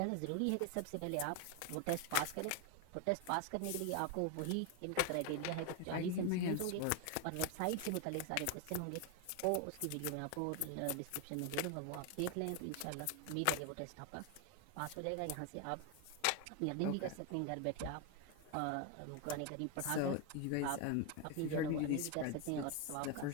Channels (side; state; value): both; different; correlation 0.01